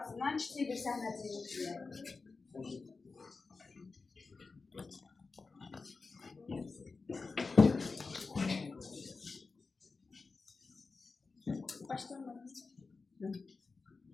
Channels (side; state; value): right; quieter; 4.2 dB